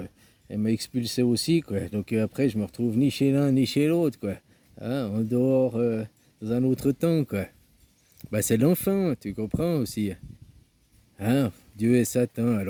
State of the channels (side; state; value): both; identical; correlation 1.00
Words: il m'a expulsé aussi quoi. Donc après je me retrouve ni chez l'un ni chez l'autre quoi. Hein, en dehors, dans un autre temps quoi. Bah c'est l'enfant, tu comprends aussi. Hein, Dieu et Satan,